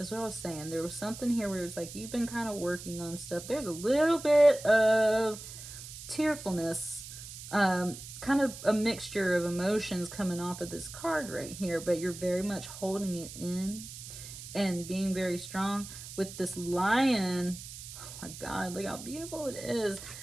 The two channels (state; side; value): noise; right; hiss, 12 dB below the sound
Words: what I was saying. There was something here where it's like you've been kind of working on stuff. There's a little bit of tearfulness, kind of a mixture of emotions coming off of this card right here, but you're very much holding it in and being very strong with this lion. Oh my God, look how beautiful it is.